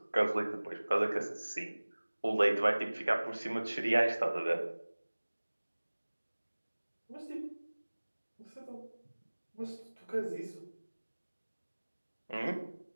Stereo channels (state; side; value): inverted; both; correlation -1.00